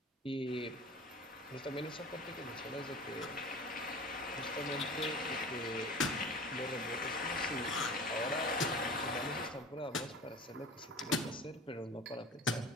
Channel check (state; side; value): normal; both; correlation 0.38